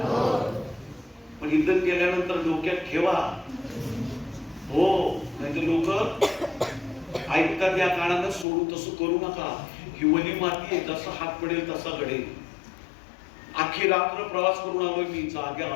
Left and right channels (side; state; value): right; drops out; at 8.5 s